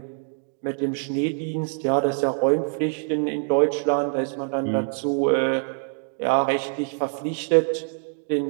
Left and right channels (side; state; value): left; silent; 56 dB below the other